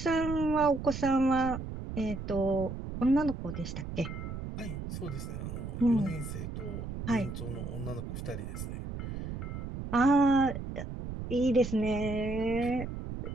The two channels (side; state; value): right; noise; rumble, 7 dB below the sound